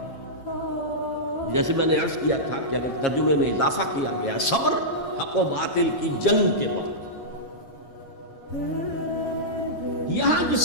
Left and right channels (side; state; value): right; late; 7.3 ms